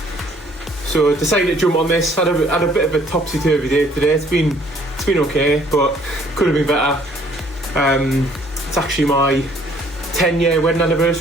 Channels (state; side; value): normal; both; correlation 0.60